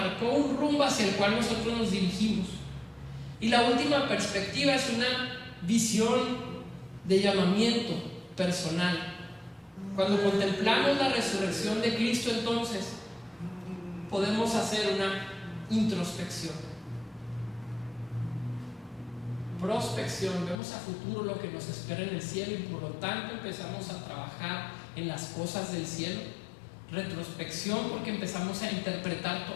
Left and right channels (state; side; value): drops out; right; at 20.6 s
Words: un rumbo hacia el cual nosotros nos dirigimos. Y la última perspectiva es una visión de llamamiento personal. Cuando contemplamos la resurrección de Cristo, entonces podemos hacer una introspección, prospección, vemos a futuro lo que nos espera en el cielo, y por lo tanto empezamos a trabajar en las cosas del cielo. Retrospección, porque empezamos a interpretar